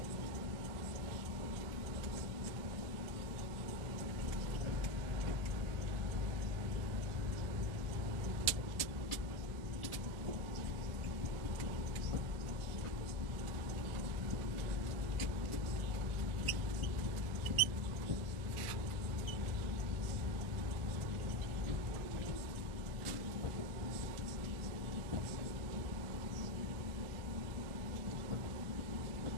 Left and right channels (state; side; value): late; left; 1.4 ms